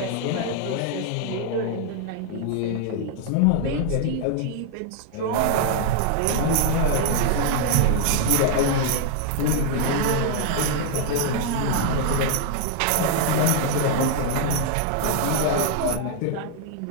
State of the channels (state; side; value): different; both; correlation 0.00